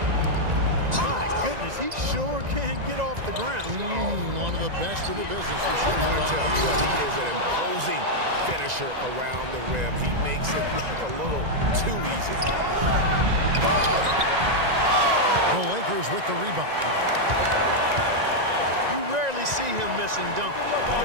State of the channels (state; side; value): late; left; 1.9 ms